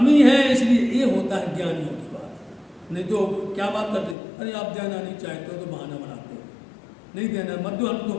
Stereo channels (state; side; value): drops out; right; at 4.2 s